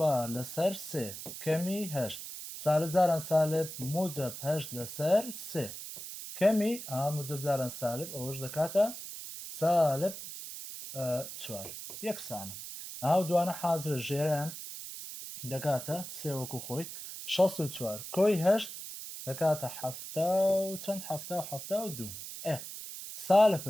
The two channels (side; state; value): right; noise; hiss, 10 dB below the sound